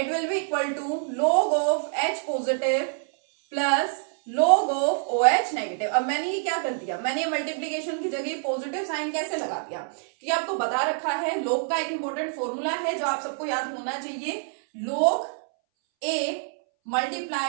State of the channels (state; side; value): silent; left; 61 dB below the other